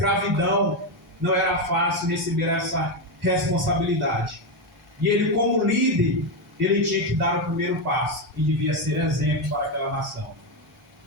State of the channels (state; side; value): normal; both; correlation 0.09